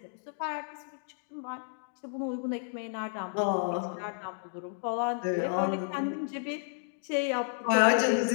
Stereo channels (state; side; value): silent; right; digital silence